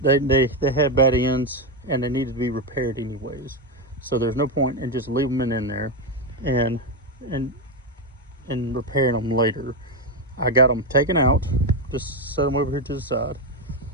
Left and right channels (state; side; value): normal; both; correlation 0.09